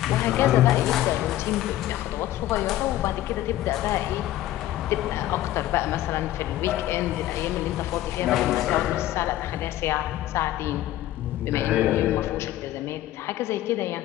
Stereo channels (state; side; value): quieter; right; 14.3 dB